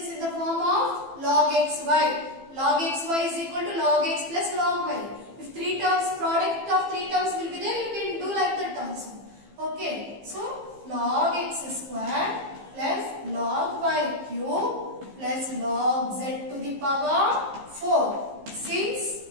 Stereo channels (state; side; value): late; left; 15 ms